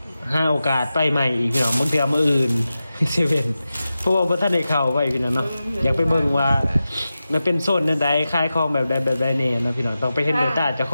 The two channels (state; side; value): inverted; both; correlation -0.93